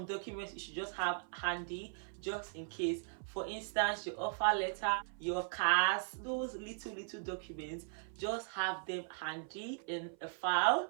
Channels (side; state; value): left; silent; 52 dB below the other